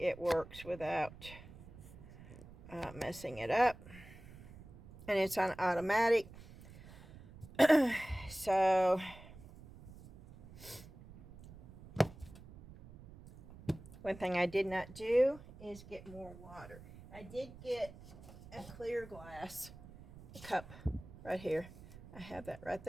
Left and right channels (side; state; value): right; noise; rumble, 18 dB below the sound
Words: it works without messing it up. And it's on automatic. So one thing I did not do is get more water. I did get a clear glass cup right here. I have that right